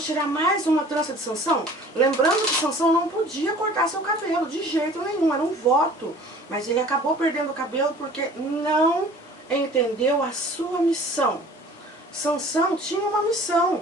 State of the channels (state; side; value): normal; both; correlation 0.48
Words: tirar mais uma trança de Sansão? Lembrando que Sansão não podia cortar seu cabelo, de jeito nenhum, era um voto. Mas ele acabou perdendo o cabelo porque não entendeu a sua missão. Sansão tinha uma